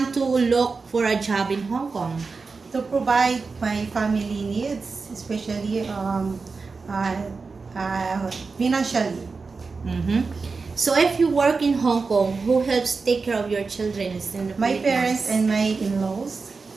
to look for a job in Hong Kong? To provide my family needs, especially uh, financially. Mm-hmm. So, if you work in Hong Kong, who helps take care of your children in the My parents Philippines? and my in-laws.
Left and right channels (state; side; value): quieter; left; 4.4 dB